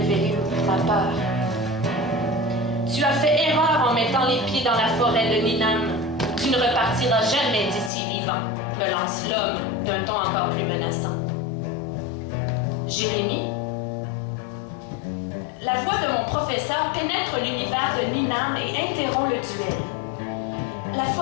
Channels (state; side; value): drops out; right; at 7.9 s